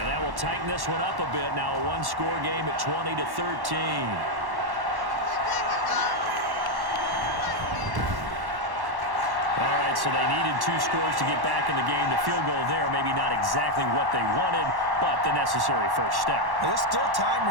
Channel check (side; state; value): left; late; 1.1 ms